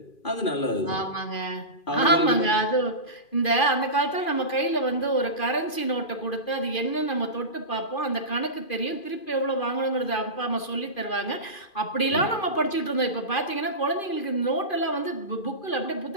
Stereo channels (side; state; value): right; late; 2.4 ms